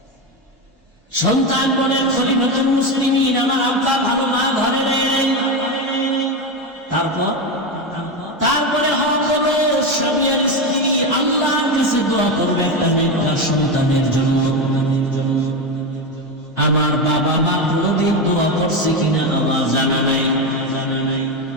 সন্তান বলেন, খলিফাতুল মুসলিমিন, আমার আব্বা ভালো মা ঘরে নেই। তারপরে হক হলো স্বামী আর স্ত্রী আল্লাহর কাছে দোয়া করবে একটা নেককার সন্তানের জন্য। আমার বাবা মা কোনদিন দোয়া করছে কিনা আমার জানা নাই।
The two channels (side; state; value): both; normal; correlation 0.14